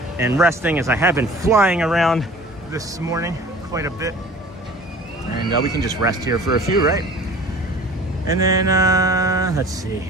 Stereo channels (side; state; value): both; normal; correlation 0.45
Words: and resting, as I have been flying around this morning quite a bit. And we can just rest here for a few, right? And then, let's see